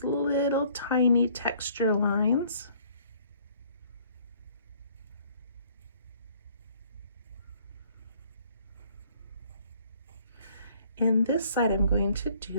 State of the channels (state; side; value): inverted; both; correlation -0.59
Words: little tiny texture lines. And this side I'm going to